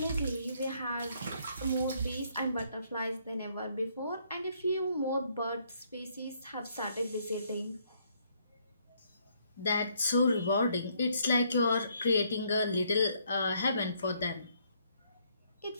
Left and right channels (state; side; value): inverted; both; correlation -0.69